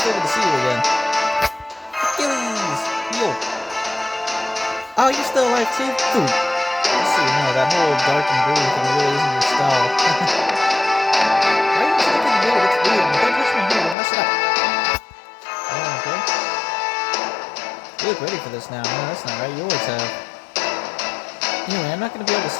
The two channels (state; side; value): drops out; right; at 14.0 s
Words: still good to see you again. Achilles! Yo! Oh, you're still alive too? Ooh. Let's see, no, that whole dark and blue thing really isn't your style. Why are you looking at me? It's weird. Don't push me here, we'll mess it up. Oh, okay. You look ready for this now. No, that's not right. You always have. Anyway, I'm not going to be able to